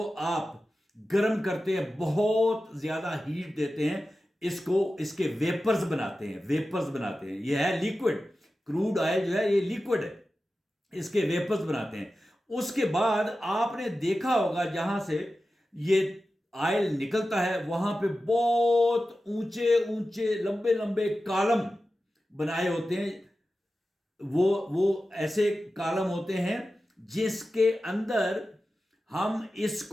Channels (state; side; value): normal; both; correlation 0.93